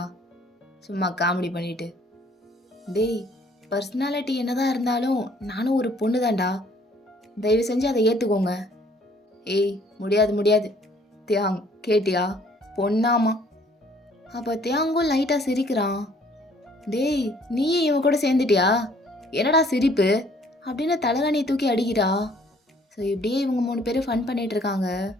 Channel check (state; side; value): normal; both; correlation 0.59